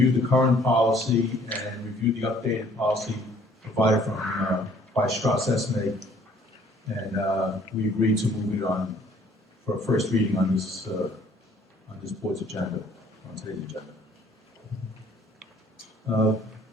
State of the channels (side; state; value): both; normal; correlation 0.58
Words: the current policy and reviewed the updated policy provided by Strauss Esme, and we agreed to move it on for a first reading on this board's agenda, on today's agenda.